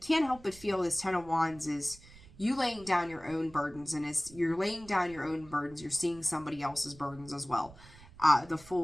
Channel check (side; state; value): right; noise; rumble, 21 dB below the sound